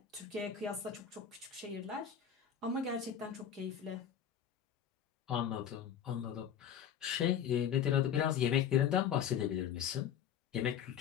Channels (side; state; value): right; quieter; 8.7 dB